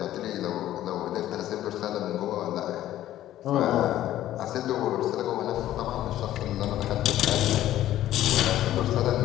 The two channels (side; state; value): right; quieter; 13.3 dB